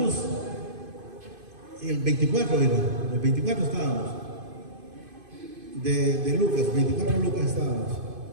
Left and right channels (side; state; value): left; late; 2.5 ms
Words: el 24 era, el 24 estábamos, de Lucas, 24 de Lucas estábamos.